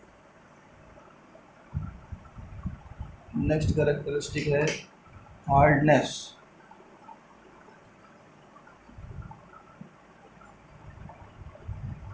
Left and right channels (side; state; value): both; identical; correlation 1.00